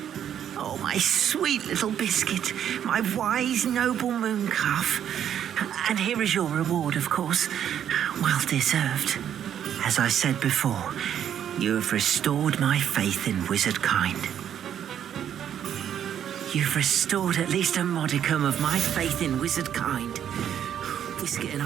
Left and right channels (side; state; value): left; quieter; 9.6 dB